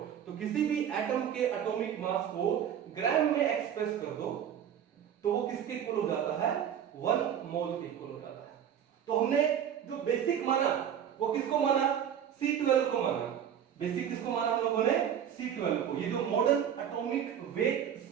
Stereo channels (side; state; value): left; quieter; 9.1 dB